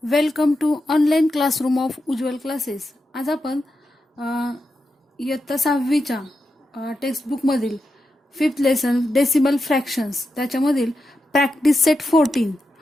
Welcome to online classroom of Ujjwal classes. आज आपण इयत्ता 6वीच्या टेक्स्टबुकमधील 5th लेसन डेसिमल फ्रॅक्शन्स त्याच्यामधील प्रॅक्टिस सेट 14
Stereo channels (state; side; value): normal; both; correlation 0.88